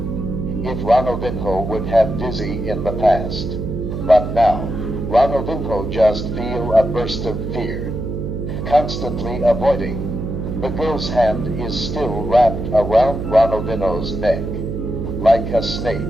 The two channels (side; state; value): right; noise; hum, 4 dB below the sound